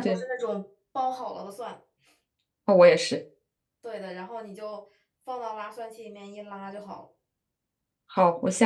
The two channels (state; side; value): identical; both; correlation 1.00